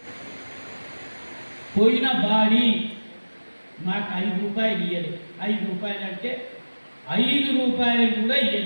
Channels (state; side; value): inverted; both; correlation -1.00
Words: పోయిన బాడీ మాకు 5 రూపాయలు ఇవ్వలేదు. 5 రూపాయలు అంటే 5 రూపాయలు కూడా